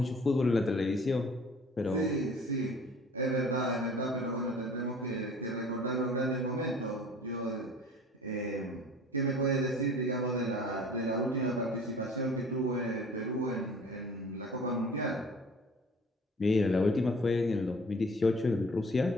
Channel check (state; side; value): normal; both; correlation 0.48